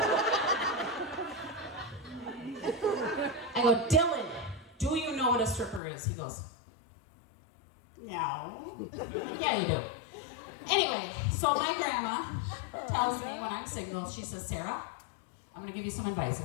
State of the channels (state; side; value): drops out; right; at 5.8 s